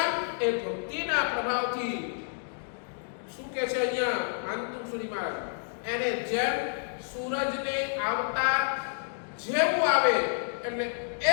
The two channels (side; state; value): right; silent; digital silence